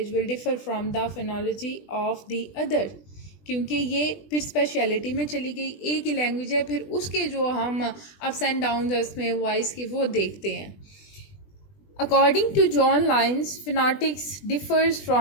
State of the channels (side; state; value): right; late; 20 ms